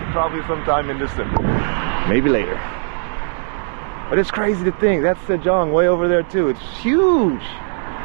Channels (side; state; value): left; silent; digital silence